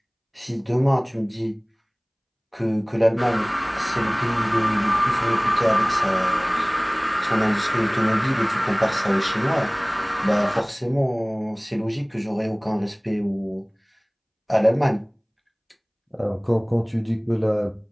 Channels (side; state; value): both; identical; correlation 1.00